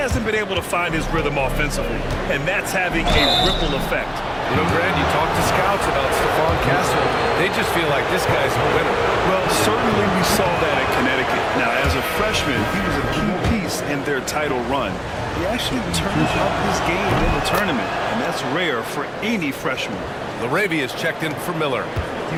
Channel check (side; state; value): both; identical; correlation 1.00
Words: been able to find his rhythm offensively, and that's having a ripple effect. You know, Grant, you talk to scouts about Stephon Castle. They just feel like this guy's a winner. Well, certainly we saw that at Connecticut. Now, as a freshman, he was a key piece in their title run. He actually turned up his game in the tournament, and that's rare for any freshman. LaRavia is checked in for Miller.